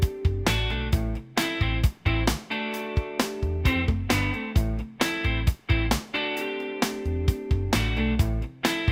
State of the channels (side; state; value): both; identical; correlation 1.00